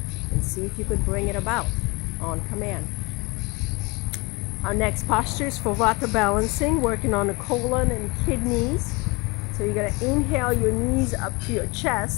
and see if you could bring it about on command. Our next posture is for Vata balancing, working on the colon and kidneys. So you're going to inhale your knees up to your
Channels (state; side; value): quieter; right; 26.6 dB